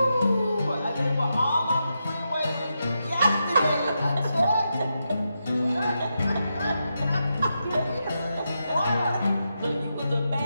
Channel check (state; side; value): inverted; both; correlation -0.86